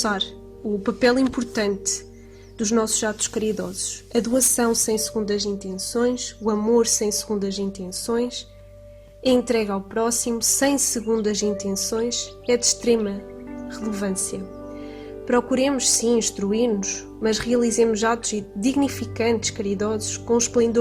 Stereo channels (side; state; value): both; identical; correlation 1.00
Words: o papel importante dos nossos atos caridosos. A doação sem segundas intenções, o amor sem segundas intenções, a entrega ao próximo sem segundas intenções é de extrema relevância. Procuremos sim instruir-nos, mas realizemos atos dignificantes, caridosos, com